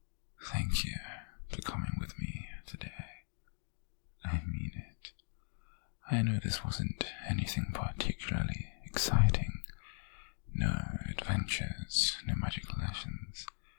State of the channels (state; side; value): silent; right; 52 dB below the other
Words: Thank you for coming with me today. I mean it. I know this wasn't anything particularly exciting. No adventures, no magical lessons,